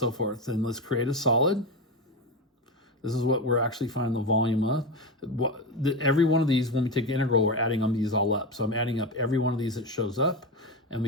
forth. And let's create a solid. This is what we're actually finding the volume of. Every one of these, when we take the integral, we're adding these all up. So I'm adding up every one of these that shows up, and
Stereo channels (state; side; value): normal; both; correlation 0.18